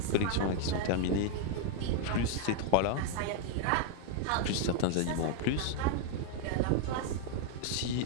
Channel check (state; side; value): different; both; correlation 0.00